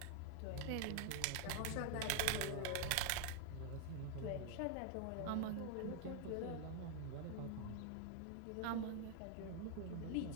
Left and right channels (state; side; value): different; both; correlation 0.01